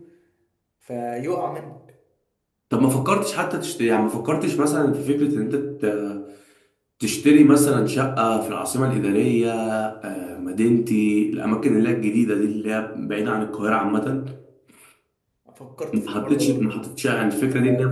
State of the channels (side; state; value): both; identical; correlation 1.00